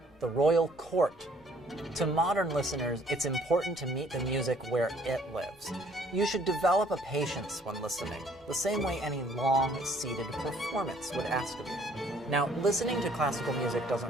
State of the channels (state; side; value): normal; both; correlation 0.60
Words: the royal court. To modern listeners, it's important to meet the music where it lives. You should develop a patience when listening, the same way any long, seated performance would ask of you. Now, listening to classical music